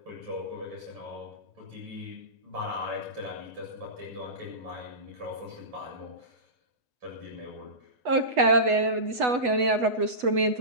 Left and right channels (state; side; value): late; left; 8.1 ms